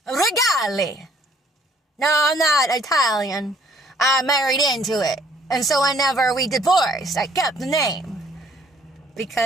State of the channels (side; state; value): both; normal; correlation 0.61